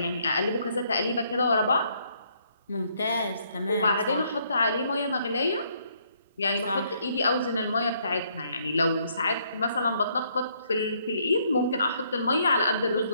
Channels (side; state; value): both; inverted; correlation -0.69